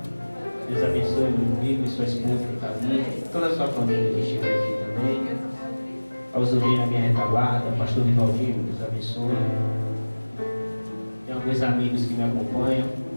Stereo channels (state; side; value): inverted; both; correlation -1.00